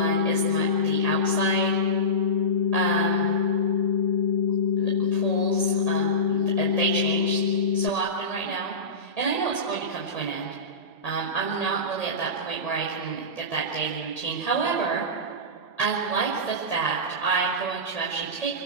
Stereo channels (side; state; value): right; late; 1.8 ms